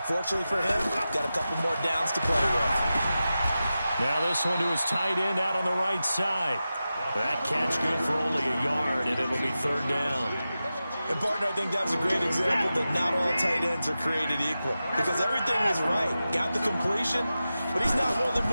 for him, got a couple more downs to play with. Now this one to his tight end out on the right side. That catch good for only a yard, and it'll be 3rd down. And, partner, I think that was a great example that not all tight ends are created equal. Because everything was right. Got the completion, but he's not one of the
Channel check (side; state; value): both; inverted; correlation -0.93